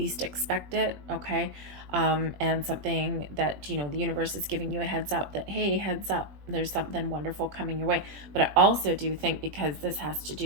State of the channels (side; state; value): left; late; 20 ms